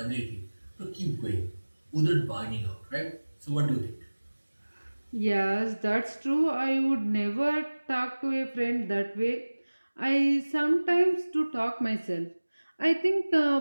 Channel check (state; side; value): inverted; both; correlation -1.00